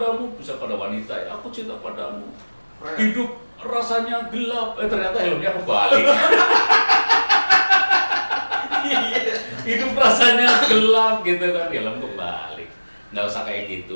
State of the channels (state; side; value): inverted; both; correlation -1.00